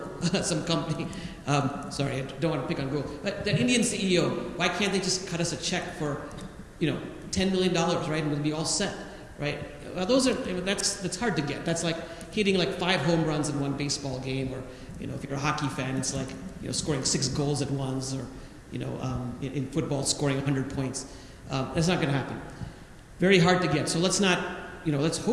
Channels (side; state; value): both; identical; correlation 1.00